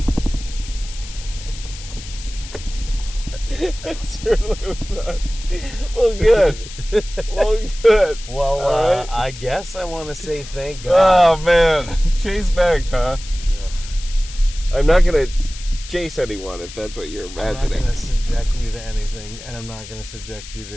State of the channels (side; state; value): left; noise; hiss, 15 dB below the sound